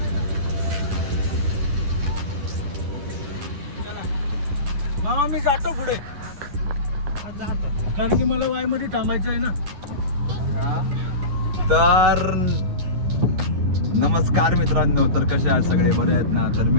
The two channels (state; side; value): late; left; 10 ms